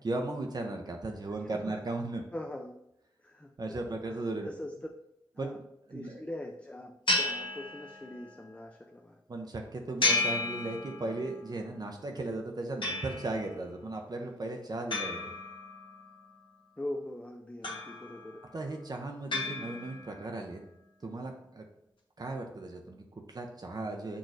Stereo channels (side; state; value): both; normal; correlation 0.39